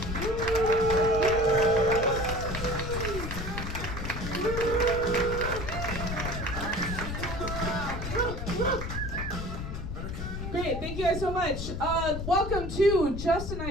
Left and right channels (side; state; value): left; noise; rumble, 5 dB below the sound